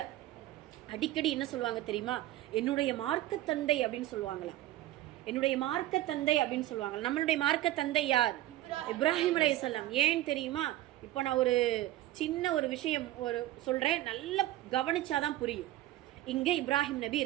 அடிக்கடி என்ன சொல்லுவாங்க தெரியுமா? என்னுடைய மார்க்க தந்தை அப்படின்னு சொல்லுவாங்களா. என்னுடைய மார்க்க தந்தை அப்படின்னு சொல்லுவாங்க. நம்மளுடைய மார்க்க தந்தை யார்? இப்ராஹிம் அலைஹிஸ்ஸலாம். ஏன் தெரியுமா? இப்போ நான் ஒரு சின்ன ஒரு விஷயம் சொல்றேன், நல்லா கவனிச்சாதான் புரியும். இங்க இப்ராஹிம் நபி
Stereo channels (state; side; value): quieter; left; 15.2 dB